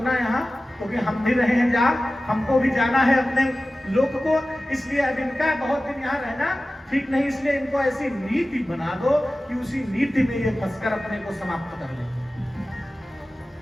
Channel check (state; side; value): normal; both; correlation 0.96